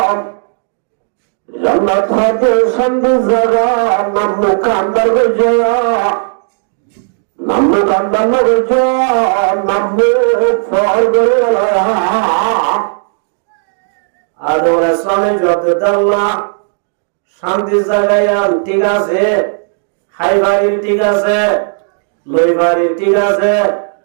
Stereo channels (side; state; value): left; silent; digital silence